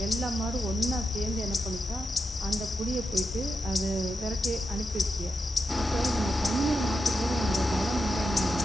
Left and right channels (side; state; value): both; normal; correlation 0.87